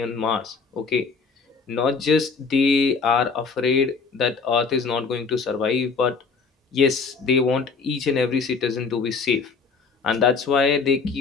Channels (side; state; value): right; quieter; 4.9 dB